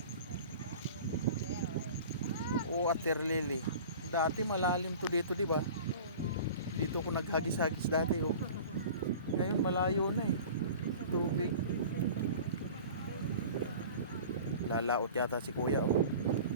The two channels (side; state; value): both; inverted; correlation -0.40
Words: Oh, Water Lily. Dati malalim to dito, di ba? Dito ako naghagis-hagis dati, oh. Ngayon malayo na, eh. Tubig. Lalaot yata si kuya, oh.